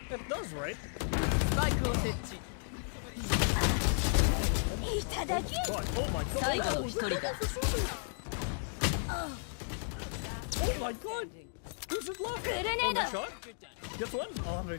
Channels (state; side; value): silent; right; digital silence